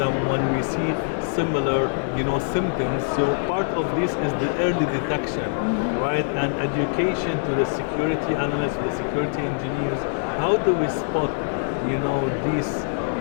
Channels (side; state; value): right; silent; digital silence